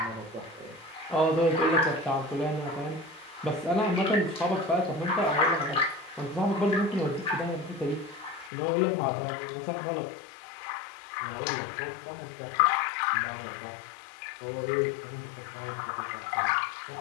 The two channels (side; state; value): right; drops out; at 8.5 s